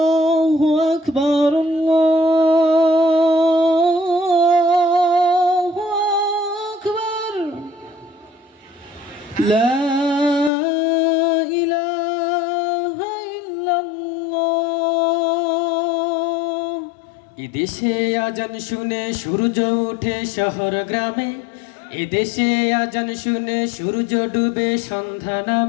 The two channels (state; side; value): drops out; right; at 10.5 s